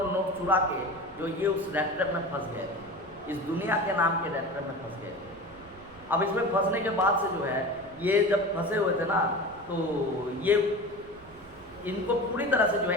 नोट चुरा के जो ये उस रैप में फंस गए थे, इस दुनिया के नाम के रैप में फंस गए थे। अब इसमें फंसने के बाद से जो है ये जब फंसे हुए थे ना, तो ये इनको पूरी तरह से जो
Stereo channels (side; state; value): right; noise; rumble, 24 dB below the sound